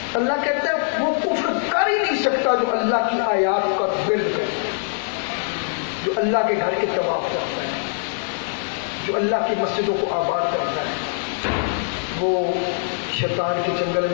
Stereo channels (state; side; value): silent; right; digital silence